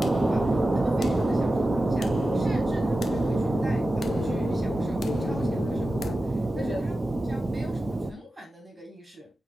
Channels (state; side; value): normal; both; correlation 0.93